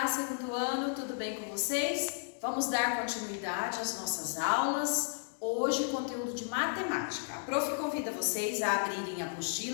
segundo ano, tudo bem com vocês? Vamos dar continuidade às nossas aulas. Hoje, conteúdo de matemática. A prof convida vocês a abrirem a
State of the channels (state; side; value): silent; right; digital silence